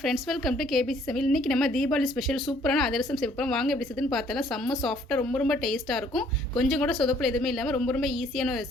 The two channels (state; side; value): normal; both; correlation 0.62